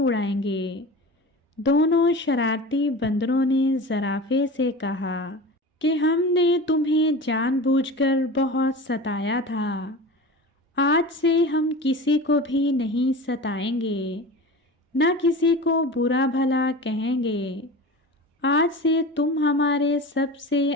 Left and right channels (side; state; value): both; normal; correlation 0.32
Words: گے۔ دونوں شرارتی بندروں نے زرافے سے کہا کہ ہم نے تمہیں جان بوجھ کر بہت ستایا تھا، آج سے ہم کسی کو بھی نہیں ستائیں گے، نہ کسی کو برا بھلا کہیں گے۔ آج سے تم ہمارے سب سے